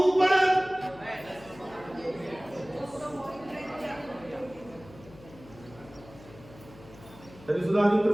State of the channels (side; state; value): left; noise; hum, 20 dB below the sound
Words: तरी सुद्धा आम्ही